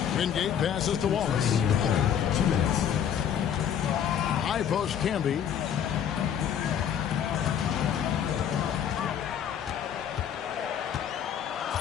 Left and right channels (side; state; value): right; quieter; 8.9 dB